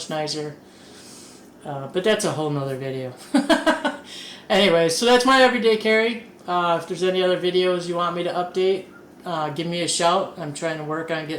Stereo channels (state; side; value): identical; both; correlation 1.00